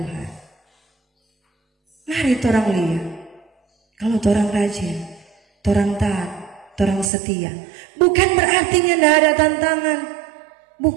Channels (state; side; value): drops out; left; at 7.1 s